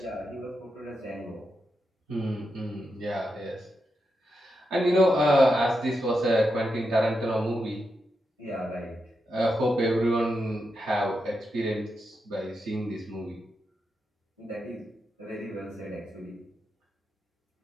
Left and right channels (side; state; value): both; normal; correlation 0.86